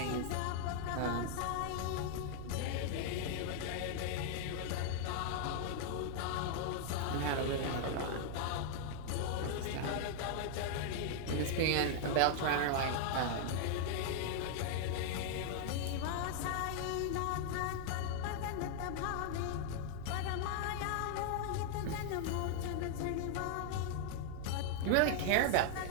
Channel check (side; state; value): both; different; correlation 0.00